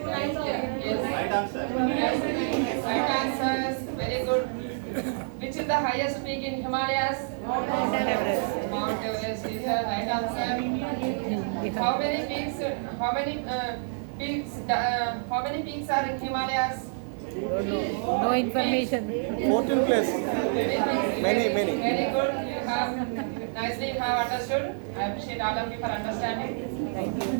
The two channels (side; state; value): left; silent; digital silence